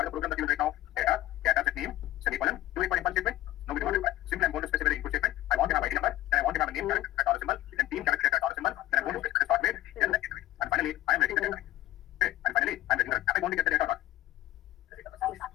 is the program that you will write now? Data set name, semicolon. Do you require impulse statement? No, we don't require. Simply I'm going to specify the input statement. I want to have ID number, then I want to have a name character at dollar symbol, then team character at dollar symbol, then I'm going to specify the start date, then the end date. And finally, I am writing the data. Okay, and finally, I am writing the data. Am I going to get the data or not?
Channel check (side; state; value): right; quieter; 15.7 dB